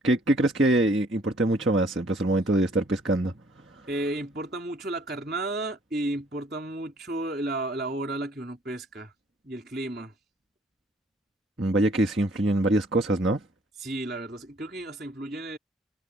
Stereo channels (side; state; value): both; normal; correlation 0.60